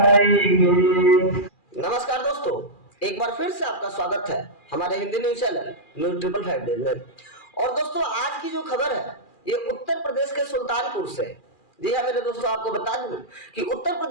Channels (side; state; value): right; late; 2.4 ms